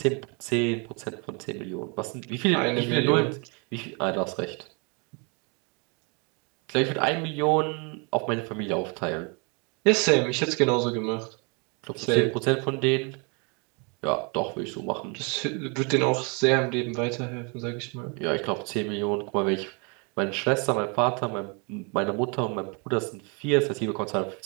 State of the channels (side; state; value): left; quieter; 33.5 dB